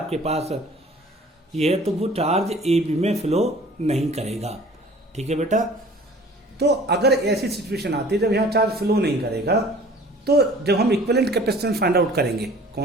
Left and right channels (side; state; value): both; normal; correlation 0.48